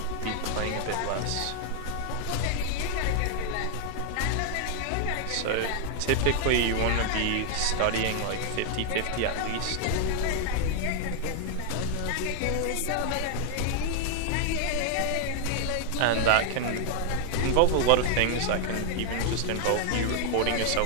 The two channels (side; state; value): both; different; correlation 0.00